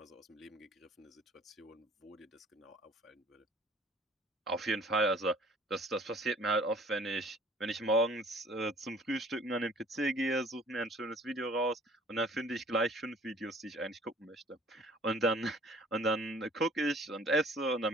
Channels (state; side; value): normal; both; correlation 0.53